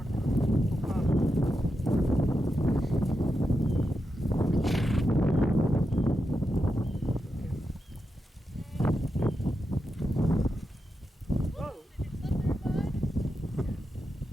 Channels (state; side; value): normal; both; correlation 0.87